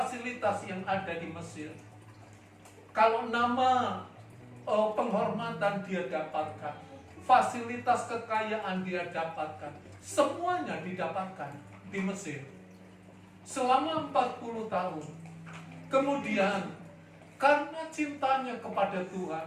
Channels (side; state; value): both; identical; correlation 1.00